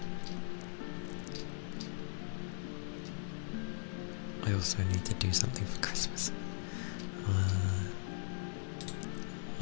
I also need to do something for Christmas.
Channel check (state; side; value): silent; right; digital silence